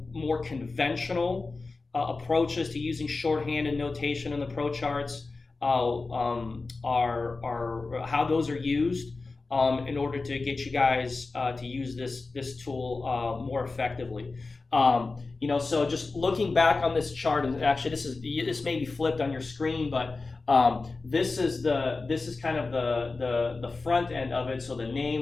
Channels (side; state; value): right; quieter; 3.8 dB